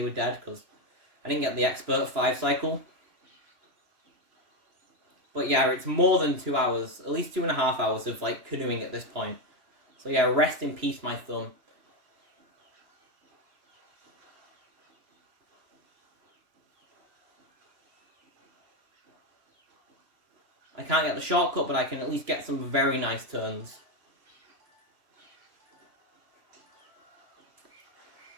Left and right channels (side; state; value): left; late; 2.9 ms